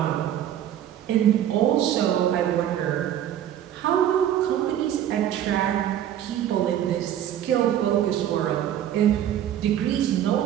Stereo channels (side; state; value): left; quieter; 10.9 dB